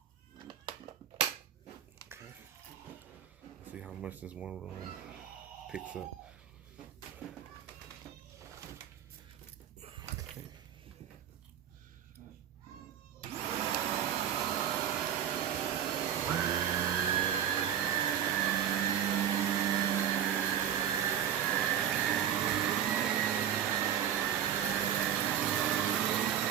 see how much this one room picks up. Okay.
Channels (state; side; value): quieter; left; 9.7 dB